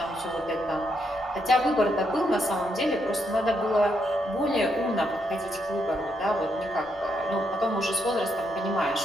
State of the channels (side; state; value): both; normal; correlation 0.78